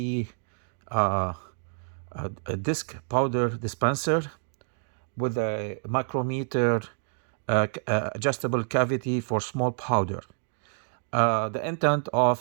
uh, a disc powder dispenser with a micrometer adjustable cavity for small powder. The intent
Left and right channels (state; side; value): silent; left; 59 dB below the other